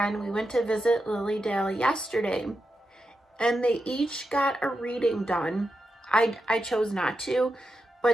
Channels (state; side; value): normal; both; correlation 0.88